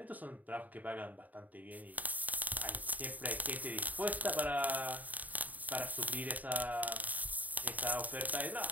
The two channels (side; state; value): left; late; 0.078 ms